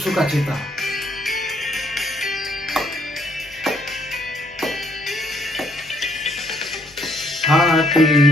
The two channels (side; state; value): left; noise; hum, 27 dB below the sound